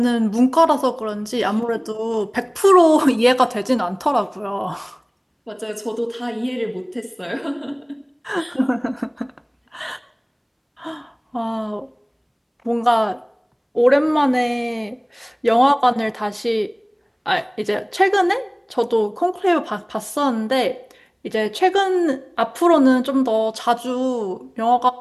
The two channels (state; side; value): identical; both; correlation 1.00